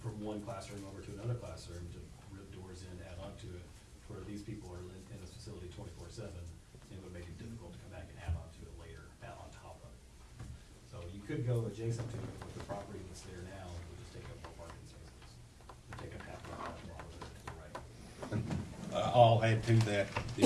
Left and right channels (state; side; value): identical; both; correlation 1.00